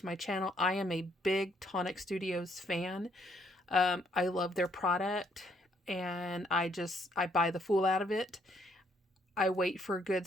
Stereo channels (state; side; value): normal; both; correlation 0.69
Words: my channel. I am a big Tonic Studios fan. I love their product, and I buy the fool out of it. I wait for good